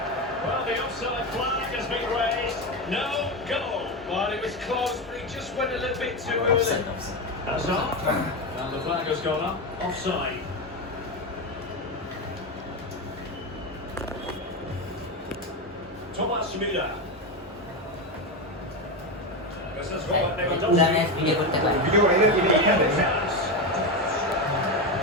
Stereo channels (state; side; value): normal; both; correlation 0.14